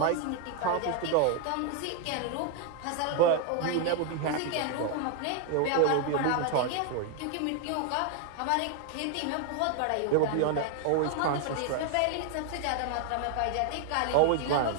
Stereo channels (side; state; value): both; different; correlation 0.00